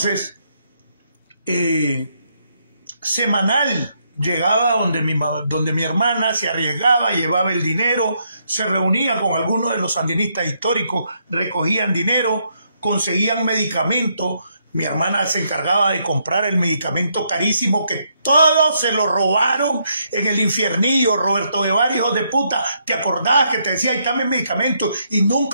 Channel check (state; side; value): inverted; both; correlation -0.75